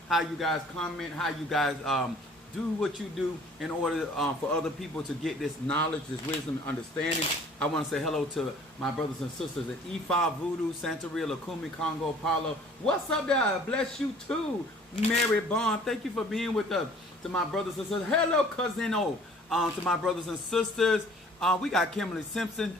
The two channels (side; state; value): both; normal; correlation 0.53